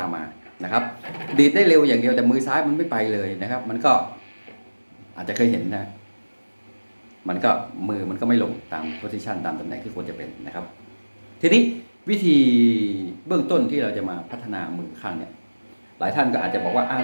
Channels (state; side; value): inverted; both; correlation -1.00